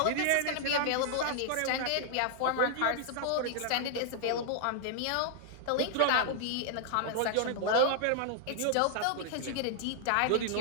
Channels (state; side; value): different; both; correlation -0.01